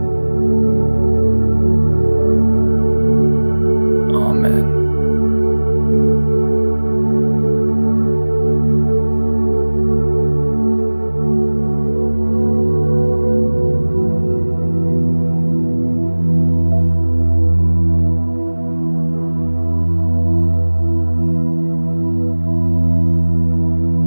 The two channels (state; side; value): inverted; both; correlation -1.00